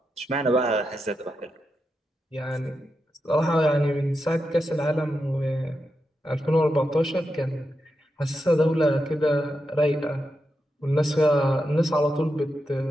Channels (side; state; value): both; normal; correlation 0.87